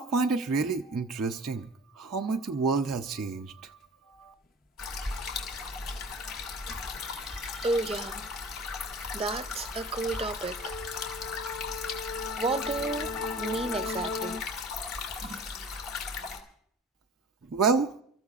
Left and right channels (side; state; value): both; normal; correlation 0.41